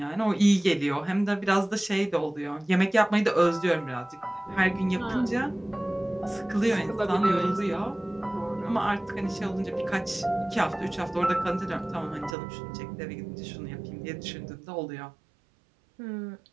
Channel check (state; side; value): drops out; left; at 12.4 s